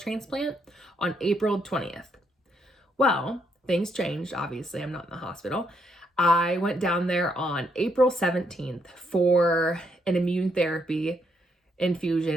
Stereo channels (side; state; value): both; normal; correlation 0.75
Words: on April 20th. Well, things changed. Obviously, I'm not in the hospital. I went down there on April 17th for an immune therapy